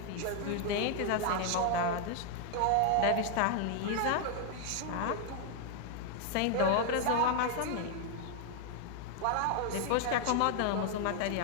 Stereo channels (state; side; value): different; both; correlation 0.00